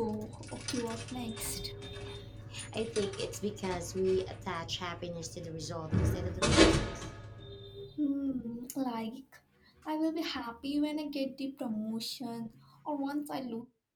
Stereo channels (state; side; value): identical; both; correlation 1.00